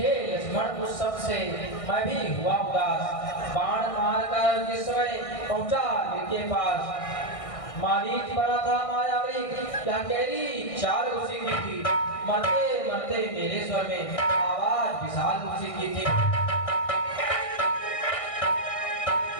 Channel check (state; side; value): late; right; 1.6 ms